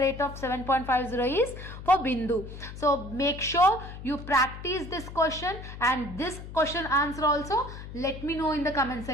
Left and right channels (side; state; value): left; noise; hum, 12 dB below the sound